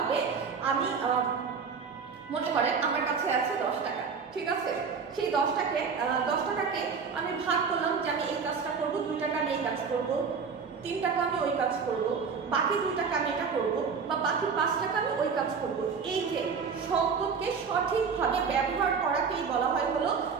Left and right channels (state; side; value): quieter; left; 5.7 dB